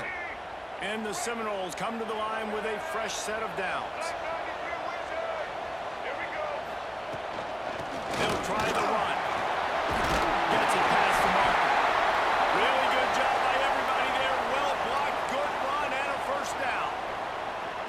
And the Seminoles come to the line with a fresh set of downs. They'll try the run. Gets it past the marker. Really good job by everybody there. Well blocked, good run, and a first down.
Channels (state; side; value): identical; both; correlation 1.00